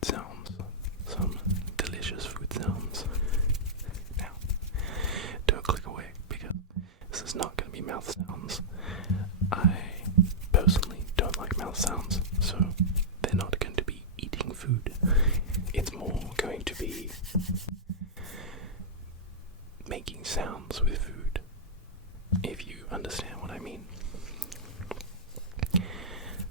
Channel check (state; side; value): normal; both; correlation -0.11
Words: sounds, some delicious food sounds. Now, don't click away because this is not going to be mouth sounds. I personally don't like mouth sounds, so they're not going to be eating food. It's more going to be making sounds with food, if you understand what I mean.